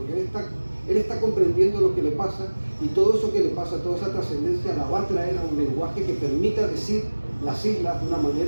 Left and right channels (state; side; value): inverted; both; correlation -1.00